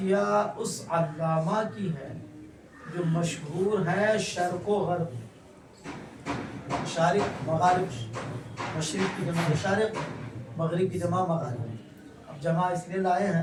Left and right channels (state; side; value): identical; both; correlation 1.00